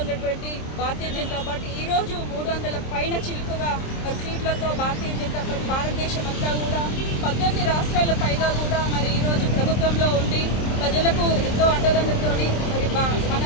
ఉన్నటువంటి భారతీయ జనతా పార్టీ ఈరోజు 300 పైన చిలుకగా మరి సీట్లతో భారతీయ జనతా పార్టీ భారతదేశం అంతా కూడా 18 రాష్ట్రాల పైగా కూడా మరి ఈరోజు ప్రభుత్వంలో ఉండి ప్రజలకు ఎంతో అండదండలతోని మరి మన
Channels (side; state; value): right; late; 27 ms